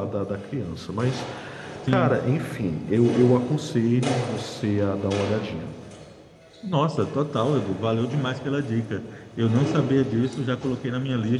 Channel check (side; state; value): both; identical; correlation 1.00